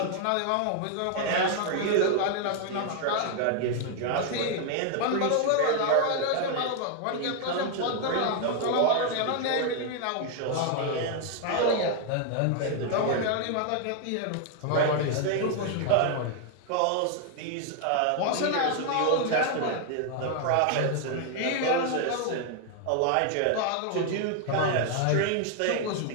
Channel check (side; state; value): both; different; correlation 0.00